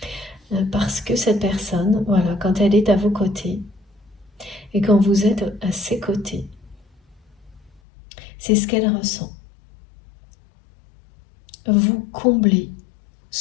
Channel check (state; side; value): drops out; right; at 7.8 s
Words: Parce que cette personne, voilà, quand elle est à vos côtés et quand vous êtes à ses côtés, c'est ce qu'elle ressent. Vous comblez